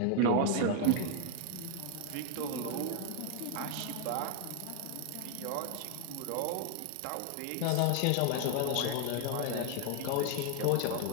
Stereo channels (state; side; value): different; both; correlation 0.00